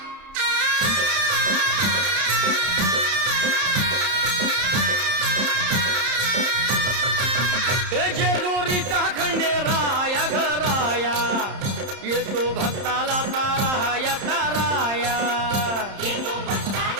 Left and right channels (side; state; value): left; late; 31 ms